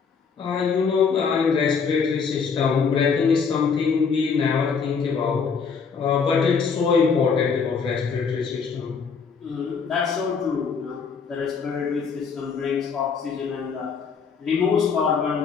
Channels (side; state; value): right; quieter; 5.7 dB